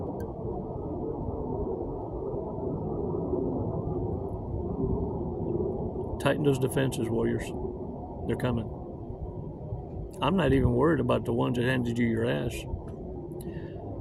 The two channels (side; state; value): both; identical; correlation 1.00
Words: Tighten those defenses, warriors. They're coming. I'm not even worried about the ones that handed you your ass.